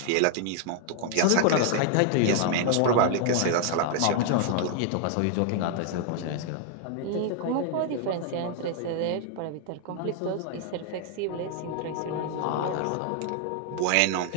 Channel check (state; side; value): different; both; correlation 0.00